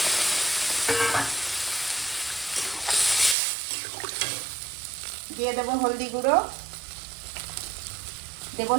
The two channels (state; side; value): drops out; left; at 3.4 s